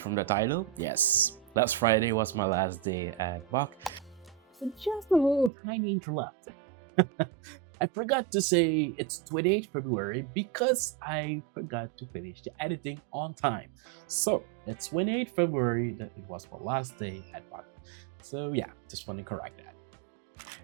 from the title, yes, last Friday was my last day at Bach. So, just a little tiny interrupt. I forgot to say it's 28th February because I forgot to finish the editing on time. So, it's 28th February that it was my last day at Bach. So, yeah, just want to correct that.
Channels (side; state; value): left; drops out; at 5.5 s